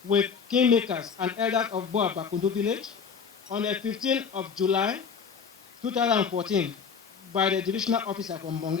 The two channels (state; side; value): quieter; right; 6.2 dB